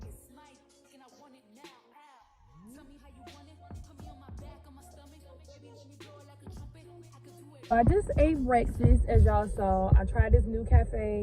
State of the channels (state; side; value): identical; both; correlation 1.00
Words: I just ate breakfast, as y'all saw. I tried this new